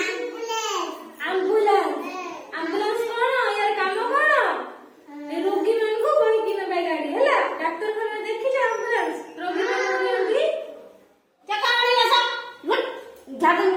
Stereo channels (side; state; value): both; identical; correlation 1.00